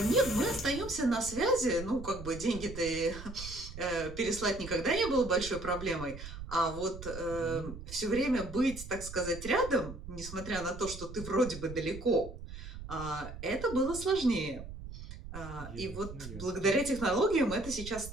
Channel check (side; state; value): right; noise; rumble, 11 dB below the sound